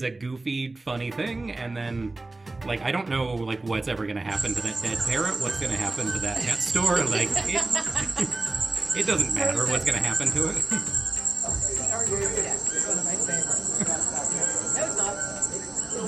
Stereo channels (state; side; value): quieter; left; 3.2 dB